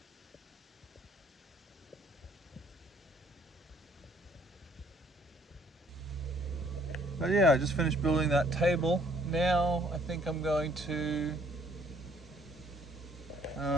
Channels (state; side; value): normal; both; correlation 0.62